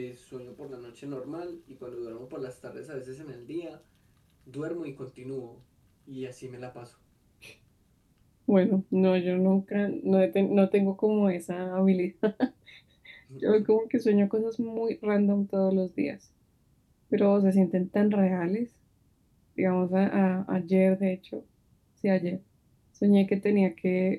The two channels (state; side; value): identical; both; correlation 1.00